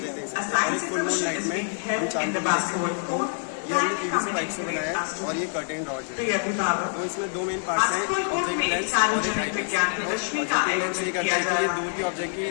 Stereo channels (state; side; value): silent; right; 61 dB below the other